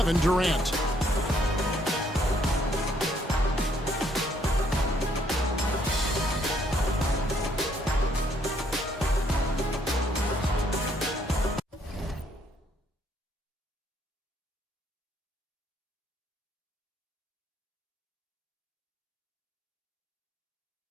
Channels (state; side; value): normal; both; correlation 0.68